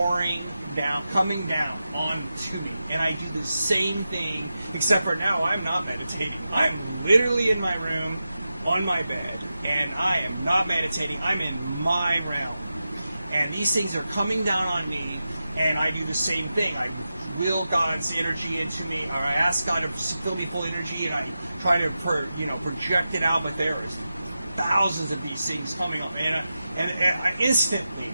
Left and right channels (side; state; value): both; inverted; correlation -0.91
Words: down, coming down onto me, and I do the same thing, except for now I'm not meditating. I'm literally in my room, on my bed, and I am not meditating. I'm in my realm, and these things are coming down on me, and I do the same thing. I will God's energy into me, or I ask God to fill me full energy, and I try to project it out, but there is thousands of these things coming up, and I instantly